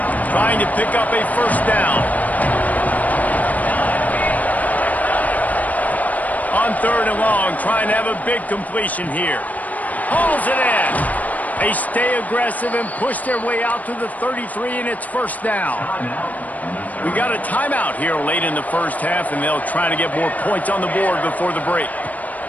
Trying to pick up a first down. On third and long, trying to have a big completion here. Hauls it in. They stay aggressive and push their way out to the 33, and it's first down. We got a timeout here late in the first half, and they'll try to get more points on the board before the break.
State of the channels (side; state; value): right; late; 0.075 ms